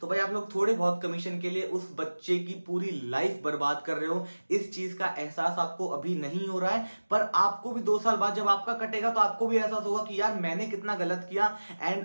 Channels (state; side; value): inverted; both; correlation -1.00